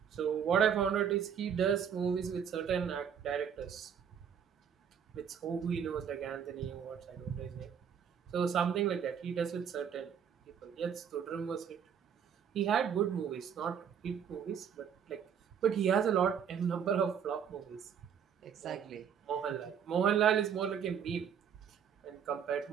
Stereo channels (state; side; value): quieter; left; 7.8 dB